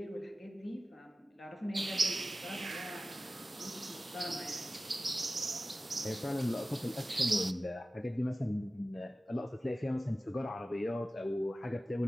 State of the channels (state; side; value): normal; both; correlation 0.96